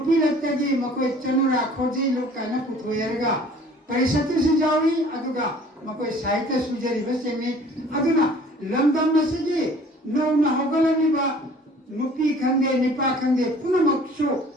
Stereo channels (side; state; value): both; normal; correlation 0.51